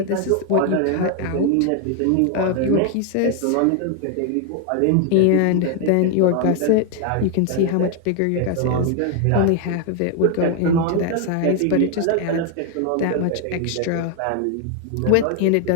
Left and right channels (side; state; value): both; different; correlation 0.00